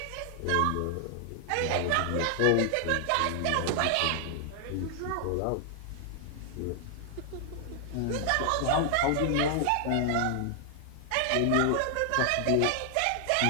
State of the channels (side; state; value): both; different; correlation 0.00